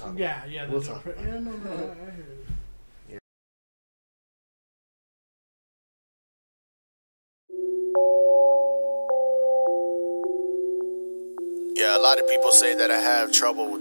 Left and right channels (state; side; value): inverted; both; correlation -1.00